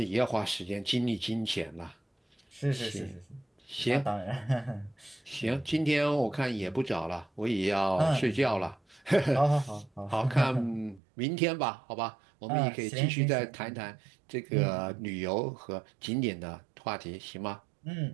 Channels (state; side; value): drops out; left; at 11.0 s